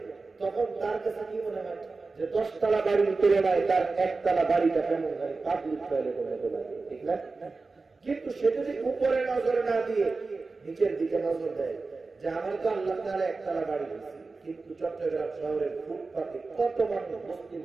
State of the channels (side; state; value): left; quieter; 3.9 dB